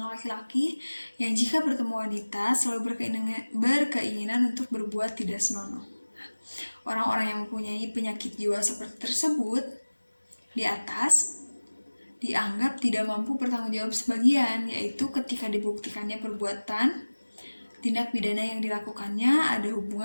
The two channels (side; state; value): both; inverted; correlation -1.00